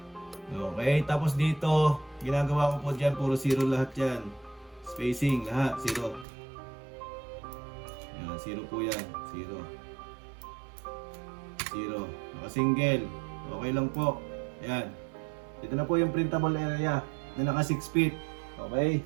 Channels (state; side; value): drops out; left; at 6.2 s